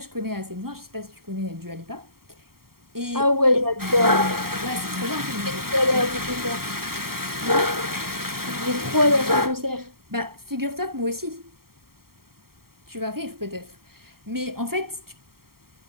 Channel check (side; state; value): left; late; 0.93 ms